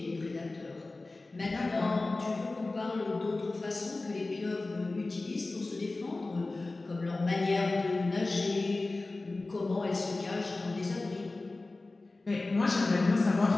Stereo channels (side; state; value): right; quieter; 3.2 dB